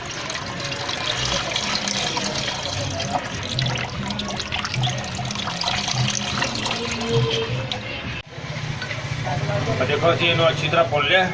देखो असं इनू अच्छी तरह भुन लिया,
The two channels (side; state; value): both; identical; correlation 1.00